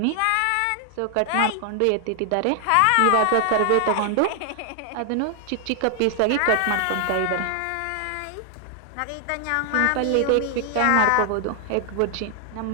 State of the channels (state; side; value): different; both; correlation 0.00